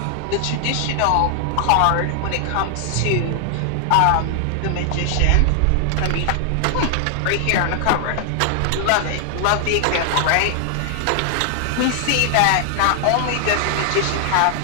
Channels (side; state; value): both; different; correlation 0.00